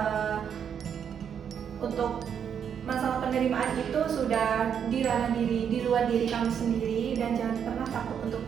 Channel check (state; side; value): quieter; left; 8.0 dB